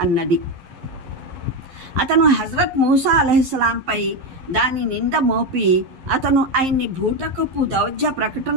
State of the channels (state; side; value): late; left; 11 ms